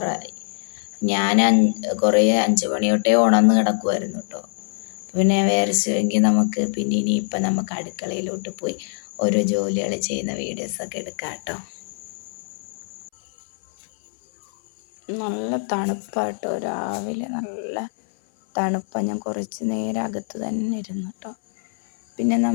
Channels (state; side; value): silent; right; 61 dB below the other